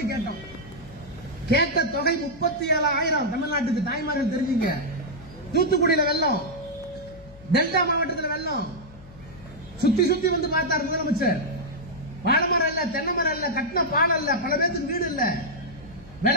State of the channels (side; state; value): left; noise; hum, 20 dB below the sound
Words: கேட்டோம். கேட்ட தொகை 37,000. தமிழ்நாட்டுக்கு தாய்மார்கள் தெரிஞ்சுங்க. தூத்துக்குடியில வெள்ளம், டெல்டா மாவட்டத்தில் வெள்ளம். சுத்தி சுத்தி வந்து பார்த்தார் முதலமைச்சர். வாழைமரம் இல்ல, தென்னை மரம் இல்ல, கட்டின பால் இல்ல, பல பேருக்கு வீடு இல்ல,